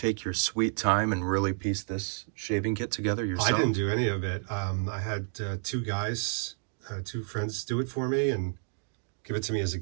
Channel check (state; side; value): silent; left; digital silence